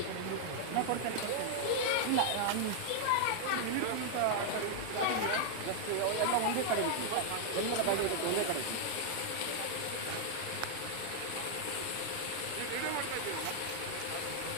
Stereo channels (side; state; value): both; different; correlation -0.01